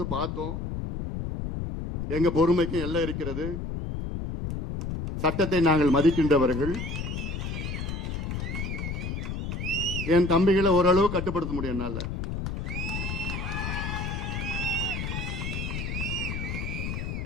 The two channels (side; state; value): left; noise; rumble, 4 dB below the sound